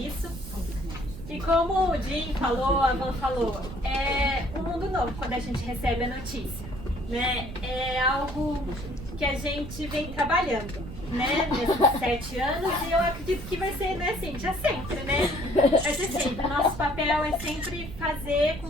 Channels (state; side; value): noise; right; rumble, 11 dB below the sound